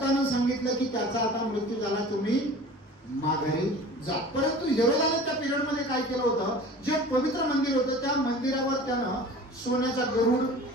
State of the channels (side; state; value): both; normal; correlation 0.41